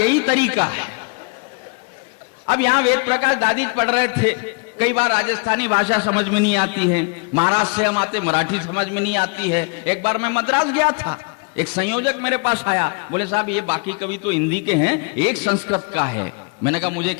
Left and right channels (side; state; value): right; quieter; 32.5 dB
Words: तरीका है। अब यहाँ वेद प्रकाश दादी पढ़ रहे थे, कई बार राजस्थानी भाषा समझ में नहीं आती है, महाराष्ट्र से हम आते मराठी समझ में नहीं आती है। एक बार मैं मद्रास गया था, एक संयोजक मेरे पास आया, बोले साहब ये बाकी कवि तो हिंदी के हैं, एक संस्कृत का है। मैंने कहा मुझे